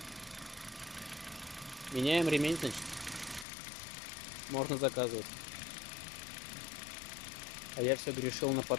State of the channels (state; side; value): drops out; right; at 3.5 s